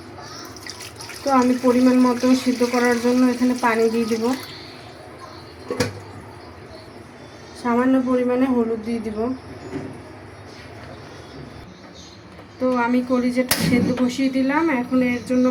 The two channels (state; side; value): identical; both; correlation 1.00